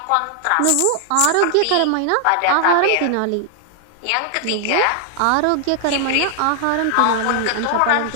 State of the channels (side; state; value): both; different; correlation 0.00